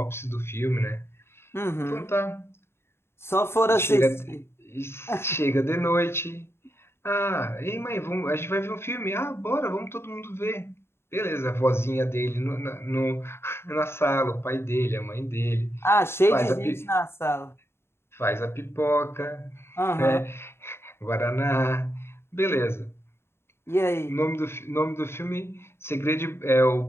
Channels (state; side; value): late; right; 0.12 ms